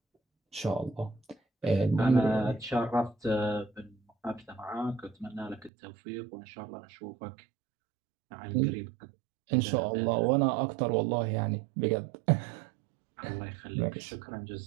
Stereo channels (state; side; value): drops out; left; at 5.7 s